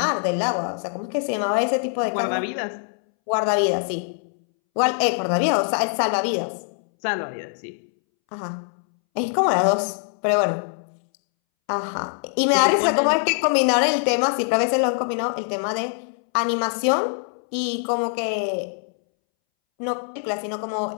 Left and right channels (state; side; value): silent; right; 63 dB below the other